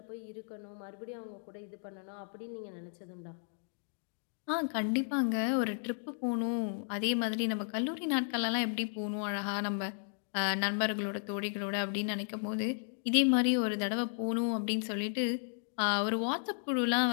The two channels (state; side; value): silent; right; digital silence